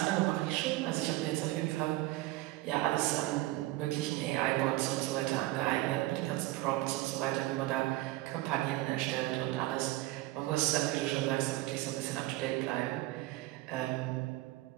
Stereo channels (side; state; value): left; quieter; 18.4 dB